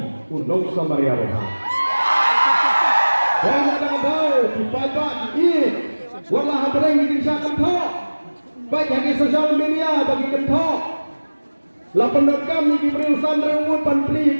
unong samaria roha dan ada bau dibaca di wala hadrang di desa kentok baik yang di sosial media bagi kentok la pendekam di berurusan rewut pantri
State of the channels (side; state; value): both; inverted; correlation -1.00